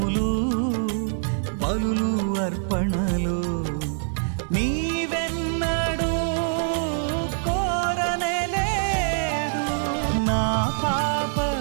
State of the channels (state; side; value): silent; left; digital silence